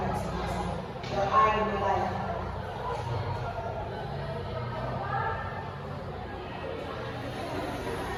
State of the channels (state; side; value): identical; both; correlation 1.00